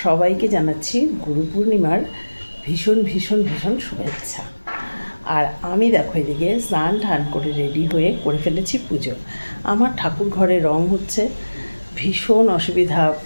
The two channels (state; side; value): inverted; both; correlation -1.00